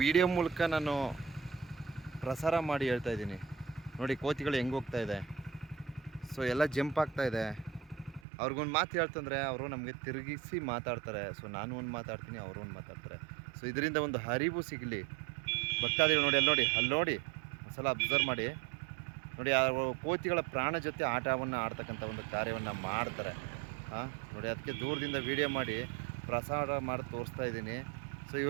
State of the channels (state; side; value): drops out; left; at 8.2 s